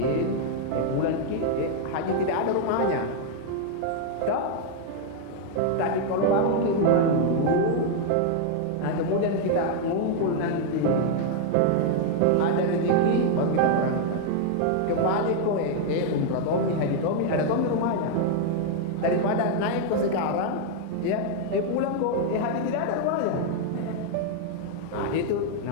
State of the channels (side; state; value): both; different; correlation 0.00